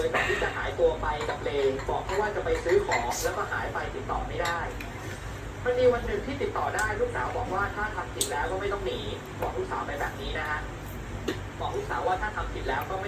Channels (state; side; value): identical; both; correlation 1.00